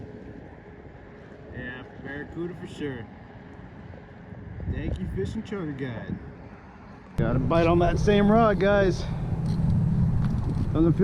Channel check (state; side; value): identical; both; correlation 1.00